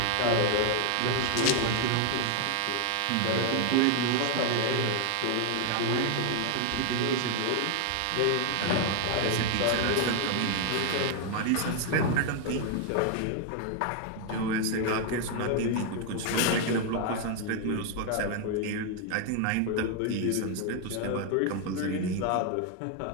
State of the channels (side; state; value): both; different; correlation 0.01